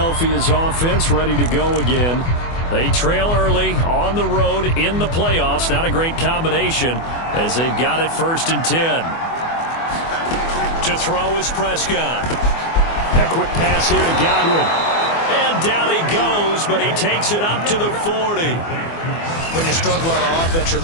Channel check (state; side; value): late; right; 24 ms